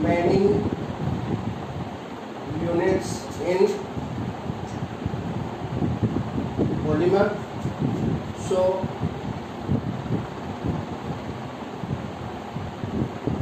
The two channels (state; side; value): identical; both; correlation 1.00